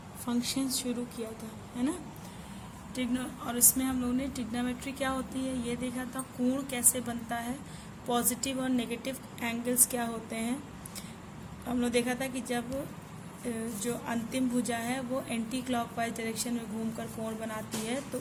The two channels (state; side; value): identical; both; correlation 1.00